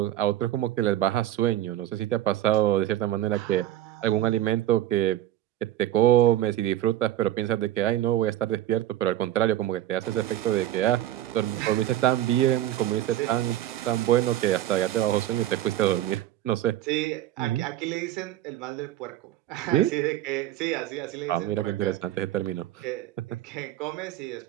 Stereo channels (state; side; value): quieter; left; 13.3 dB